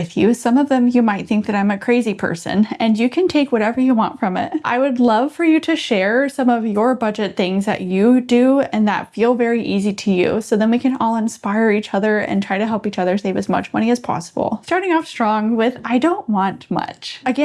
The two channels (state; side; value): identical; both; correlation 1.00